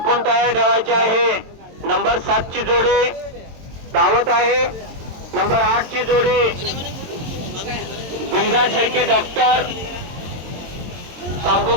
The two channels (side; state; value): left; late; 22 ms